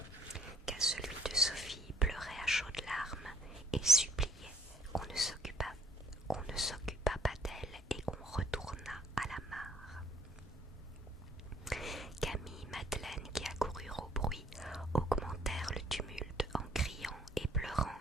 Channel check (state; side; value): normal; both; correlation 0.62